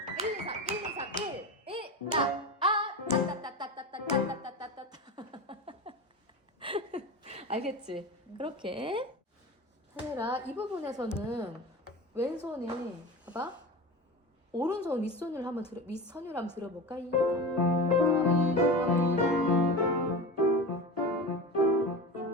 1, 2, 3, 1, 2, 3, 1, 1, 따따따따따따따따따따따 알겠지? 그렇게 다니엘아 이 부분에서는 왼손에 봐봐 오른손 윗손을 한번 윗선율 한번 들어볼까? 이게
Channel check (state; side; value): normal; both; correlation 0.28